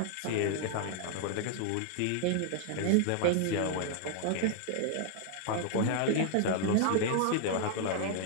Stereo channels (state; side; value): different; both; correlation -0.01